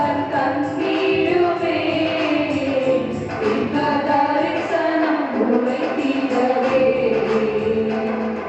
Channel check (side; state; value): both; identical; correlation 1.00